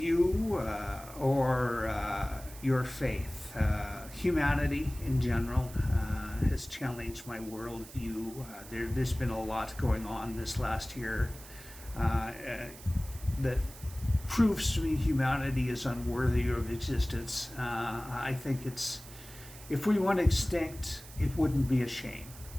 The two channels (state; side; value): noise; right; hiss, 17 dB below the sound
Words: or your faith? Humanity in general has challenged my world view. There's been a lot going on this last year that proves to me humanity is unworthy of existence. I think if we went extinct, it wouldn't be a shame.